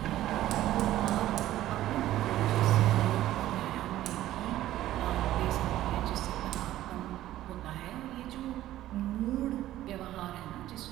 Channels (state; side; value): quieter; left; 14.1 dB